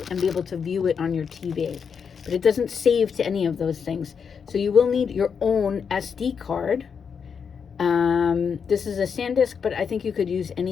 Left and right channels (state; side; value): quieter; right; 6.5 dB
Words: and be able to view it on your TV. But it doesn't save to any of those things. So you will need your own SD card. This is a SanDisk, but I think you could use